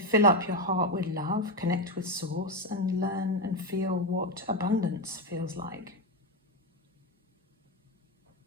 up your heart with love, connect with source, and learn and feel what abundance feels like.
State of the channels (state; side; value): normal; both; correlation 0.10